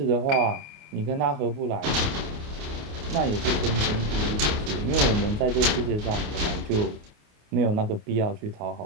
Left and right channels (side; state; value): left; late; 28 ms